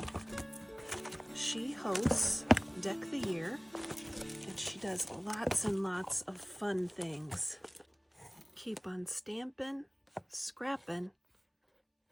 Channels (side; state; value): both; identical; correlation 1.00